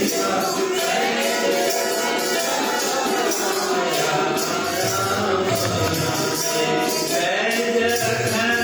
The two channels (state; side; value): identical; both; correlation 1.00